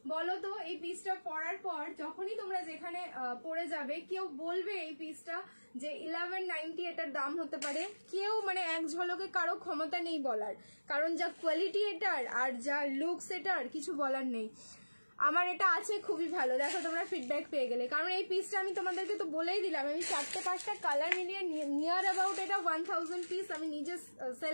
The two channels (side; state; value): both; inverted; correlation -1.00